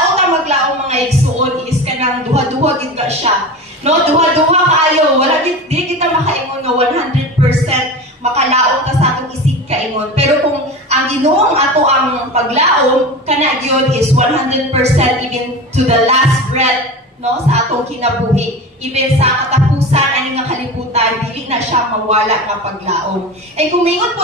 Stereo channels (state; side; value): normal; both; correlation 0.30